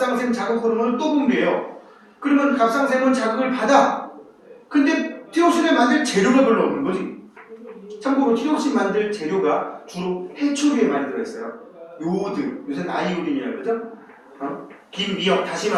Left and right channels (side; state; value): both; identical; correlation 1.00